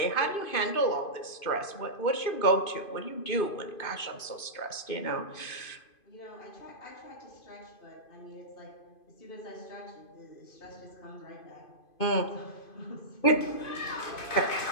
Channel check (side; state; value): right; late; 2.5 ms